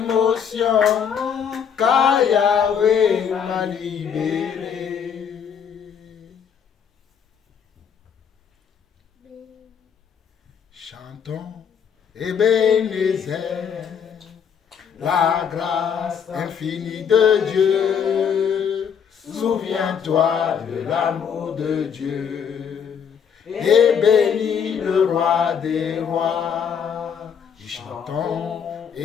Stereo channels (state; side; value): quieter; right; 7.4 dB